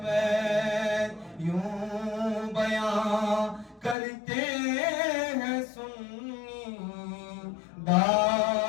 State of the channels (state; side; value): drops out; right; at 4.0 s